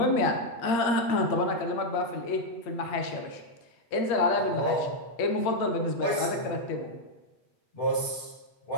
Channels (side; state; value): right; late; 8.6 ms